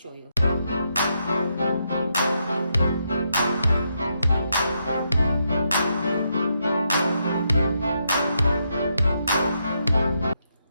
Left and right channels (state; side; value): inverted; both; correlation -0.80